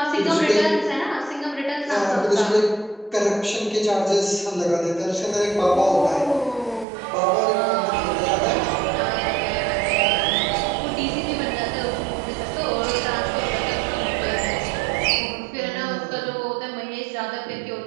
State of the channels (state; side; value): drops out; left; at 6.9 s